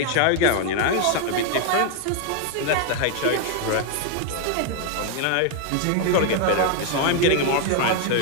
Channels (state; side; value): different; both; correlation 0.00